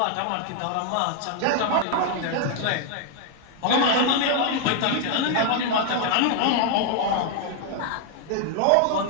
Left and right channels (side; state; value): both; different; correlation 0.00